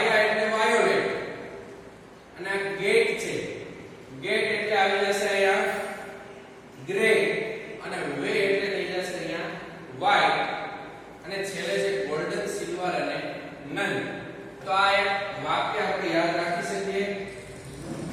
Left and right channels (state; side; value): identical; both; correlation 1.00